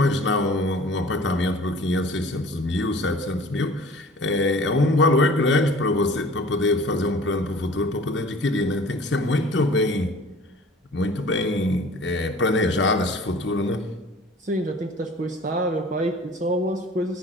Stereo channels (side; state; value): both; normal; correlation 0.46